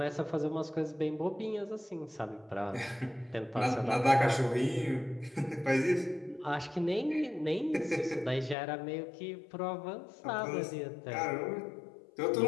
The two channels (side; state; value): right; drops out; at 8.6 s